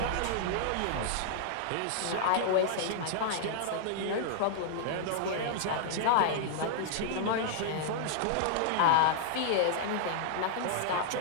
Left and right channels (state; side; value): different; both; correlation -0.01